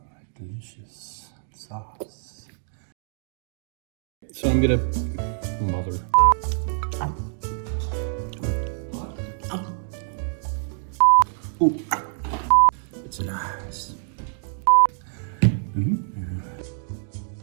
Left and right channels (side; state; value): left; silent; digital silence